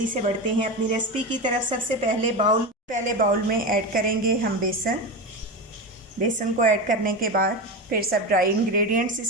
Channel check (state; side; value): normal; both; correlation 0.20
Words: से बढ़ते हैं अपनी रेसिपी की तरफ। सबसे पहले बाउल में ऐड करेंगे हम बेसन को ऐड करने के बाद फिर सब ड्राई इंग्रेडिएंट्स